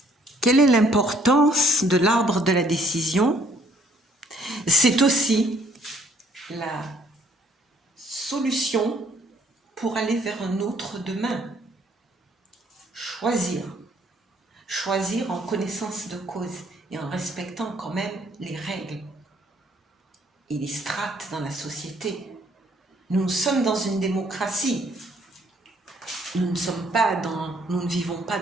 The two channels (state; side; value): normal; both; correlation 0.64